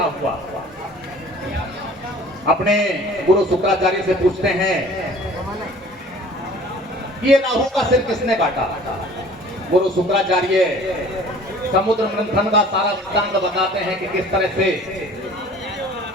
हुआ। अपने गुरु शुक्राचार्य से पूछते हैं ये राहु का सिर किसने काटा। गुरु शुक्राचार्य समुद्र मंथन का सारा सिद्धांत बताते हैं कि किस तरह से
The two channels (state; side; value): normal; both; correlation 0.48